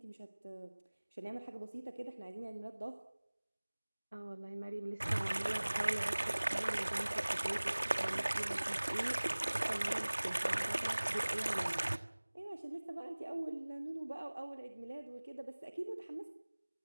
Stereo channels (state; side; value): inverted; both; correlation -1.00